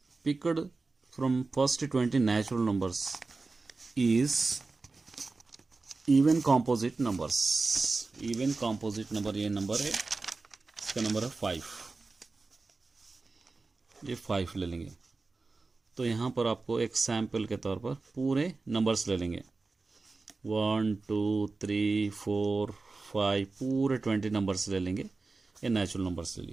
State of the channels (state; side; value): quieter; left; 3.8 dB